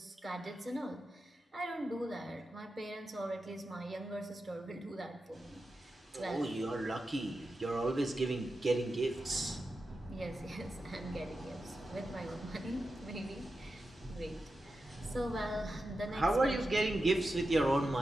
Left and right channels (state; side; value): normal; both; correlation 0.90